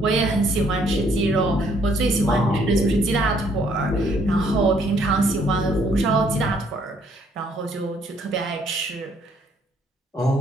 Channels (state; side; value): normal; both; correlation 0.66